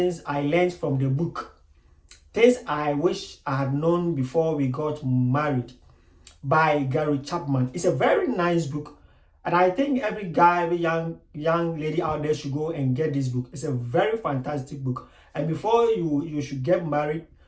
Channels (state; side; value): identical; both; correlation 1.00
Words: I learned from the book. Things I wish I had known before we got married by Gary Chapman. It's a very nice book. And I think every guy, every young lady out there should go and get this book. It's a very fantastic book. And before you should get married,